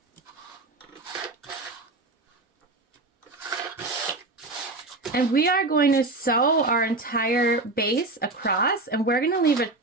And we are going to sew our entire base across, and we're going to leave a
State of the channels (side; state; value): left; quieter; 3.1 dB